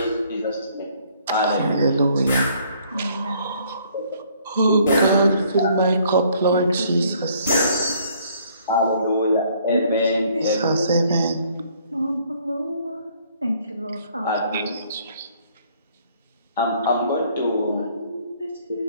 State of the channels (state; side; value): inverted; both; correlation -0.62